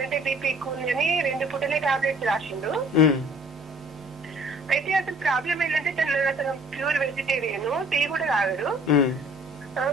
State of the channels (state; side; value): normal; both; correlation 0.54